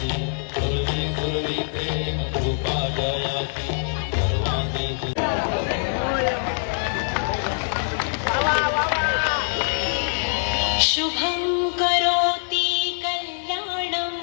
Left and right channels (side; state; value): right; silent; digital silence